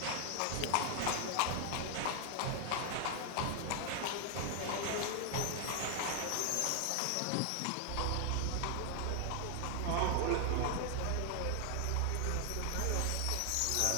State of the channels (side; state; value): both; different; correlation 0.00